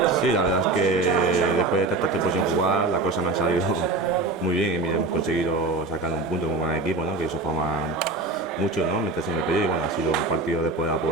Sí, la verdad es que después de tanto tiempo sin jugar, la cosa me ha salido muy bien y mira, hemos conseguido sacar un punto como buen equipo, ¿no? Que eso forma mucho, ¿no? Meterse en el periodo y bueno, ha sido un partido de poder a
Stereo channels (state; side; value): quieter; left; 3.3 dB